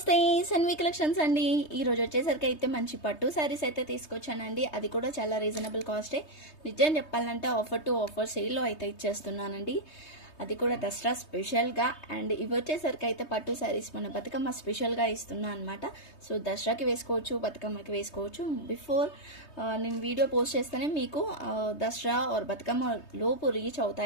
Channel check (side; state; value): right; late; 3.2 ms